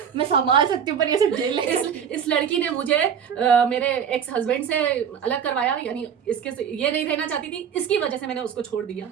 मैं संभाल सकती हूँ पर ये सब जेल इस लड़की ने मुझे मेरे एक्स हस्बैंड से अलग करवाया, यानी इसके ये नहीं रहना चाहती थी, इसकी वजह से मैंने उसको छोड़ दिया।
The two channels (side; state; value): left; quieter; 7.9 dB